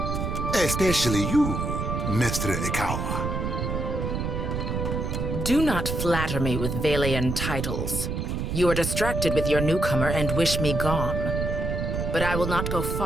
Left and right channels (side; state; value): right; noise; rumble, 2 dB below the sound